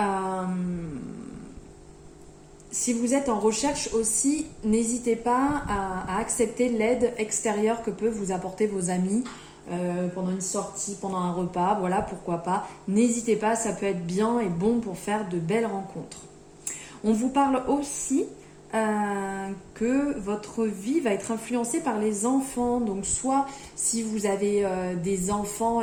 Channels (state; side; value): identical; both; correlation 1.00